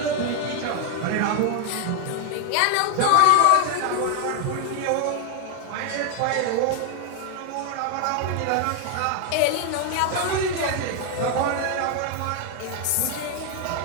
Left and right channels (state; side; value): different; both; correlation 0.00